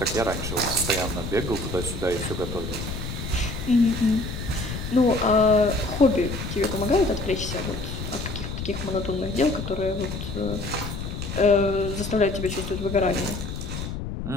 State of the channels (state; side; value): noise; left; rumble, 6 dB below the sound